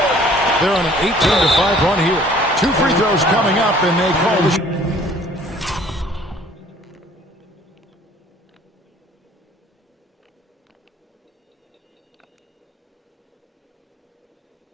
They're on an 18-5 run here. 2 free throws coming up, and they call the...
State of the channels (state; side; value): normal; both; correlation 0.55